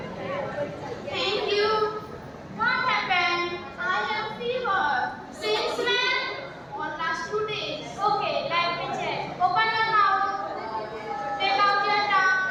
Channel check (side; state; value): both; identical; correlation 1.00